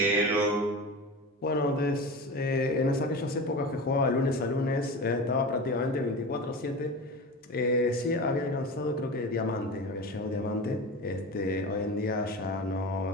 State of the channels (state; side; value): normal; both; correlation 0.29